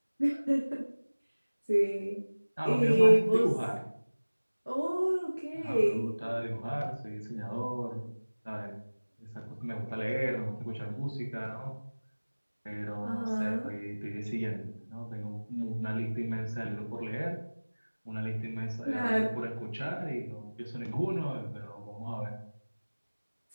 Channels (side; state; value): both; inverted; correlation -1.00